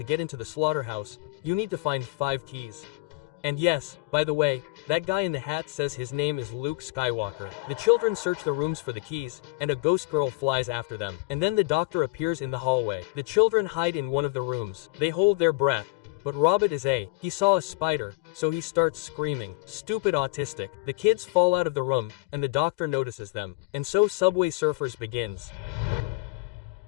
get into the slaughterhouse, you need to find 5 keys. And yes, by the way, that guy in the hat says his name is Luke Skywalker. The children search the rooms for the keys, and a ghost girl flies after them. And then the doctor appears in the hallway. The children hide in one of the rooms. They hold their breath. But Robert he saw a spider, so he starts screaming, "Stupid autistic." The kids fall out of the room, and the doctor notices them. And so Subway Surfers begins.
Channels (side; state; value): right; quieter; 24.1 dB